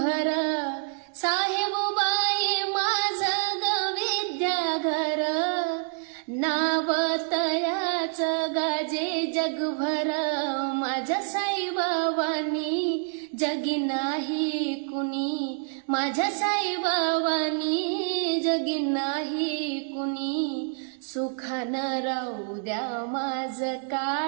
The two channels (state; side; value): silent; left; 60 dB below the other